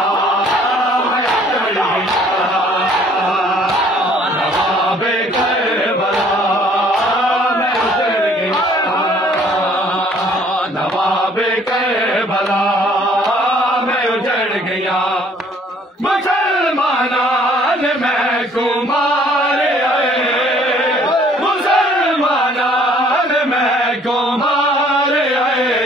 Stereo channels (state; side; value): normal; both; correlation 0.59